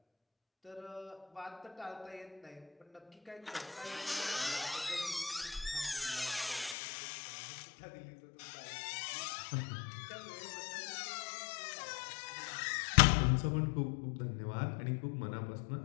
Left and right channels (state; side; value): drops out; right; at 6.8 s